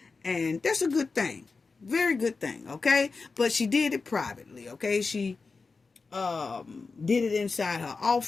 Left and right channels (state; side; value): quieter; right; 4.3 dB